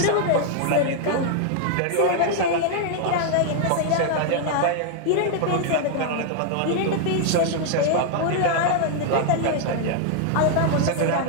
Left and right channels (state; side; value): different; both; correlation 0.00